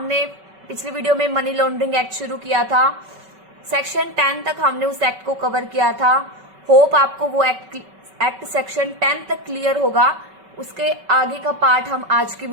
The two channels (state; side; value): late; left; 5.3 ms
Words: पिछली वीडियो में मनी लॉन्ड्रिंग एक्ट शुरू किया था। सेक्शन 10 तक हमने उस एक्ट को कवर किया था। होप आपको वो एक्ट सेक्शन 10 तक क्लियर होगा। उसके आगे का पार्ट हम आज की